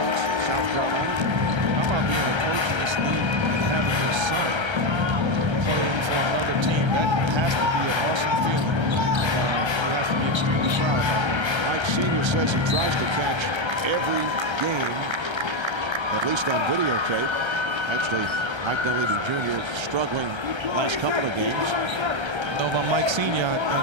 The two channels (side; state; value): left; late; 1.3 ms